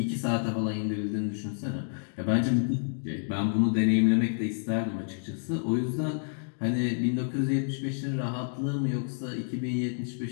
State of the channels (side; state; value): right; silent; digital silence